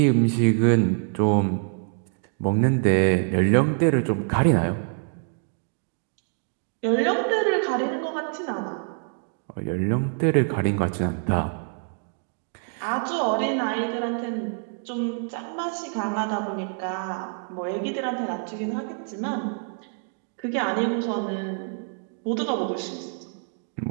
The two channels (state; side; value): silent; left; 56 dB below the other